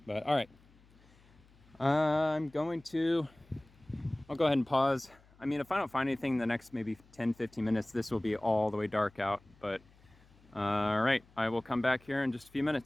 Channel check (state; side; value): noise; left; hum, 28 dB below the sound